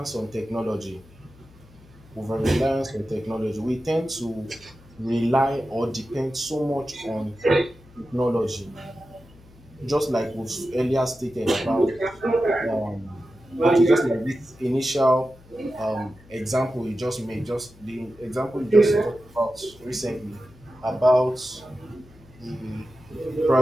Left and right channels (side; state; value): left; noise; hum, 25 dB below the sound